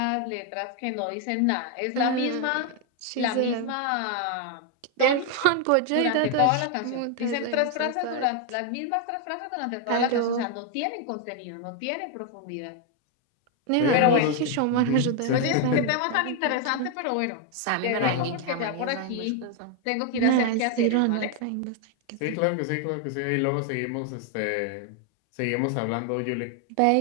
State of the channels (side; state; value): both; different; correlation 0.01